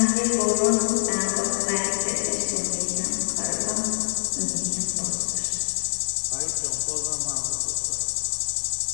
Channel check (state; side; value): silent; right; digital silence